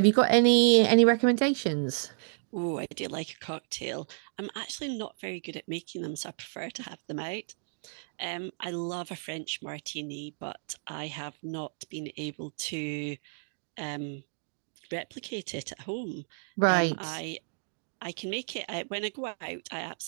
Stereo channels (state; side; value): silent; left; digital silence